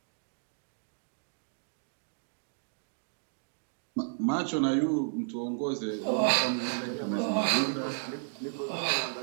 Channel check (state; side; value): silent; left; digital silence